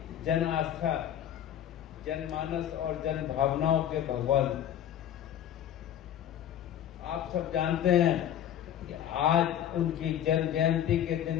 जन आस्था, जनमानस और जन भावनाओं के भगवान। आप सब जानते हैं कि आज उनकी जन्म जयंती के दिन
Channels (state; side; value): quieter; right; 10.6 dB